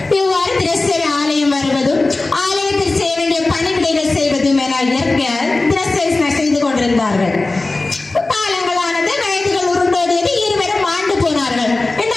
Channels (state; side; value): quieter; right; 3.2 dB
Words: இவ்வாறு தினசரி ஆலயம் வருவதும் ஆலயத்தில் செய்ய வேண்டிய பணிவிடைகள் செய்வதும் என தினசரி செய்து கொண்டிருந்தார்கள். காலங்களானது, வயதுகள் உருண்டோடியது. இருவரும் மாண்டு போனார்கள். இந்த